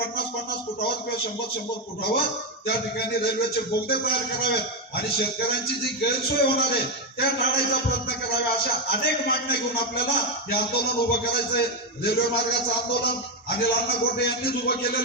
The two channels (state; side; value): normal; both; correlation 0.06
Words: फुटावर किंवा 100-100 फुटावर त्या ठिकाणी रेल्वेचे बोगदे तयार करावेत आणि शेतकऱ्यांची जी गैरसोय होणार आहे त्या टाळायचा प्रयत्न करावा. अशा अनेक मागण्या घेऊन आपल्याला हे आंदोलन उभं करायचंय. रेल्वे मार्गाचं आंदोलन अनिल अण्णा गोटे यांनीच उभं